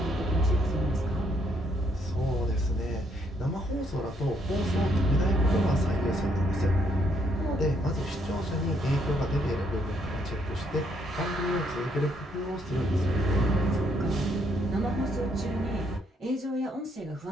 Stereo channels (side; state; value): both; normal; correlation 0.71